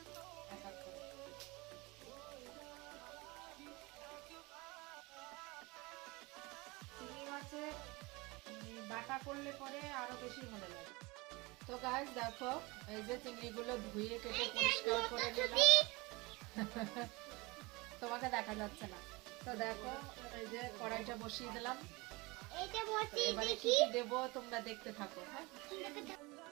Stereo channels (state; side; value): quieter; left; 24.4 dB